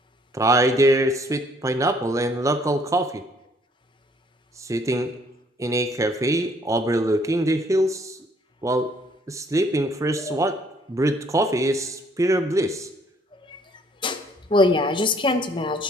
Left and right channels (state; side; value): normal; both; correlation 0.62